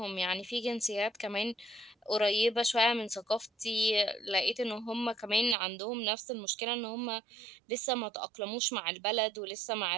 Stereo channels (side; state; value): left; drops out; at 5.6 s